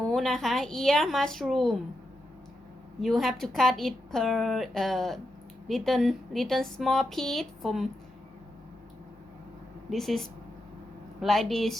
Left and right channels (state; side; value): normal; both; correlation 0.86